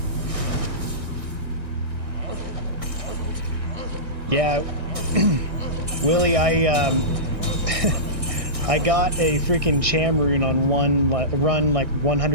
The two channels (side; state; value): left; late; 1.6 ms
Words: Yeah, Willie, I got a freaking Cham rune on run like